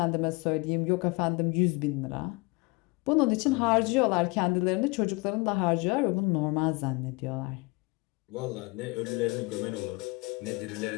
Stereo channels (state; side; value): quieter; right; 26.5 dB